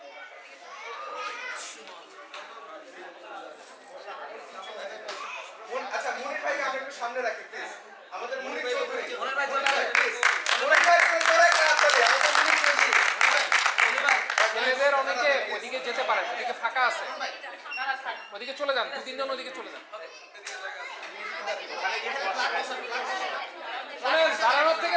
আচ্ছা মনির ভাই আমরা একটু সামনে রাখি প্লিজ। আমাদের মনির চৌধুরী, মনির ভাই প্লিজ, মনির ভাই করে একটা হাত তালি। আমাদের মনির চৌধুরী, মনির ভাই ছেলেদের অনেকে ওইদিকে যেতে পারেন, ওদিকে ফাঁকা আছে, ওদিকে চলে যান, 2-3 জন ওদিকে চলে যান। শোনেন, দাঁড়ানোর থেকে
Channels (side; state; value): both; identical; correlation 1.00